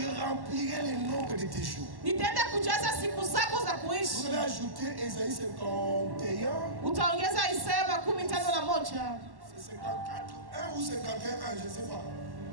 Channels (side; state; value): left; late; 1.1 ms